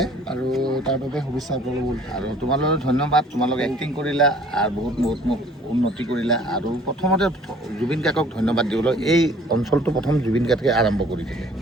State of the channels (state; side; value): normal; both; correlation 0.53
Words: আৰু তাৰ বাবে শুভেচ্ছা আপোনালোক। আৰু তোমালোকক ধন্যবাদ, তোমালোকে এক্টিং কৰিলা আৰু বহুত মোক উন্নতি কৰিলা। আৰু প্ৰথমতে জুবিন কাকক ধন্যবাদ দিবলৈ, এই অঞ্চলটো প্ৰথম জুবিন কাকে আৰম্ভ কৰি দিলে,